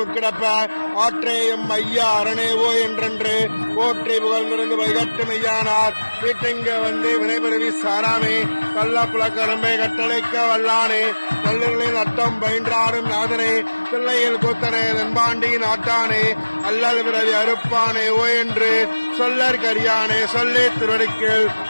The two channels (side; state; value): both; inverted; correlation -1.00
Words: உட்கிடப்ப ஆற்றேயும் ஐயா அரணேவோ என்றென்று போற்றி புகழ்ந்திருந்து வைகட்டு மெய்யானார் வீட்டிங்க வந்து வினைபெருவி சாராமே கள்ள புலக்கரம்பை கட்டளைக்க வல்லானே நல்லுகளின் அட்டம் பயின்றாடும் நாதனே பிள்ளையில் கூத்தனே தென்பாண்டி நாட்டானே அல்லல் பிறவி அறுப்பானே ஓ என்று சொல்லற் கரியானே சொல்லி திருவடிக்கில்